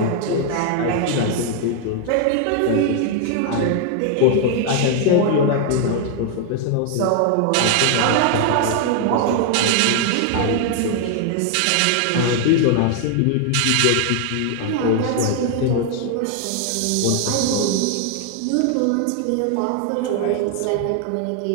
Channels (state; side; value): different; both; correlation 0.00